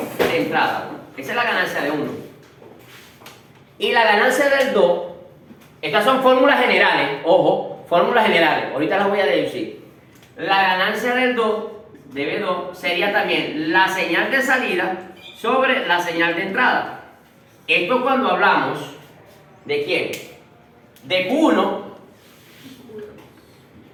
De entrada. Esa es la ganancia de 1. Y la ganancia del 2, estas son fórmulas generales, ojo, fórmulas generales, ahorita las voy a deducir. La ganancia del 2, de B2, sería también la señal de salida sobre la señal de entrada. Esto cuando hablamos de quién? De Q1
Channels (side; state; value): both; identical; correlation 1.00